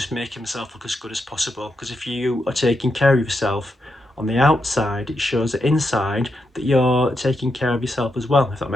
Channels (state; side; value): normal; both; correlation 0.84